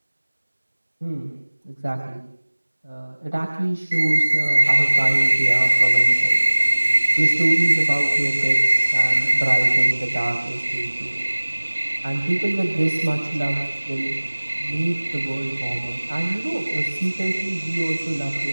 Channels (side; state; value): both; inverted; correlation -1.00